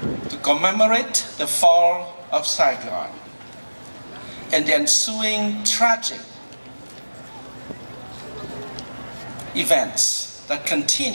to commemorate the fall of Saigon and the ensuing tragic events that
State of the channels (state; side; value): inverted; both; correlation -1.00